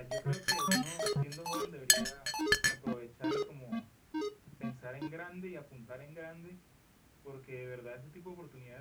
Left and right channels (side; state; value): both; identical; correlation 1.00